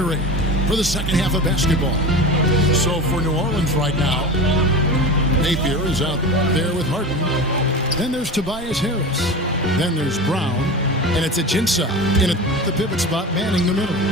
for the second half of basketball. So for New Orleans right now, Napier is out there with Harden. Then there's Tobias Harris. Then there's Brown. And it's Ajinça in the pivot spot manning the middle.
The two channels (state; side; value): normal; both; correlation 0.30